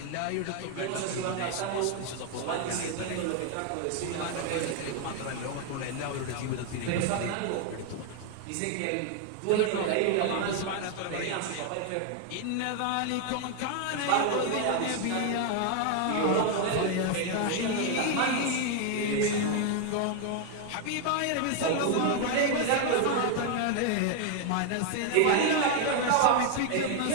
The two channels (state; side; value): different; both; correlation 0.00